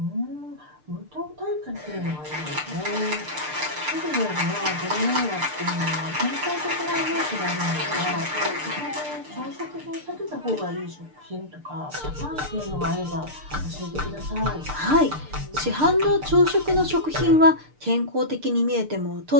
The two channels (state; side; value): late; left; 6.7 ms